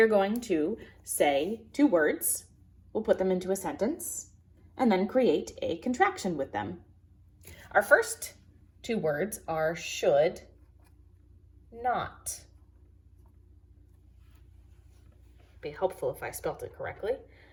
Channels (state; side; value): identical; both; correlation 1.00